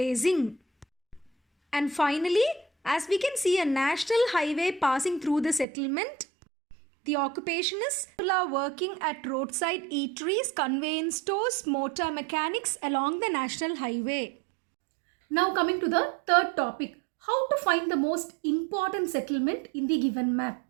And finally, as we can see a national highway passing through the settlement, the occupation is people are working at roadside eateries, conveyance stores, motor mechanics along the national highway. Now coming to the third topic, how to find the most important settlement in the given map.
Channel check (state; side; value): drops out; left; at 5.7 s